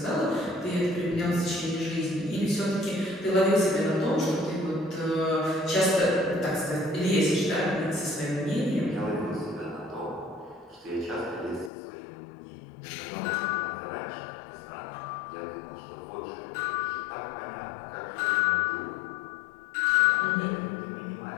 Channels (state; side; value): drops out; right; at 11.7 s